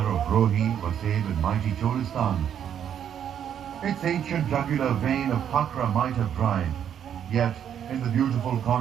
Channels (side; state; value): left; quieter; 9.1 dB